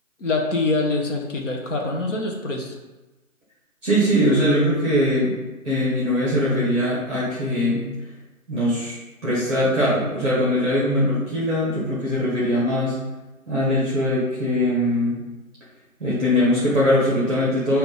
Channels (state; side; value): normal; both; correlation 0.20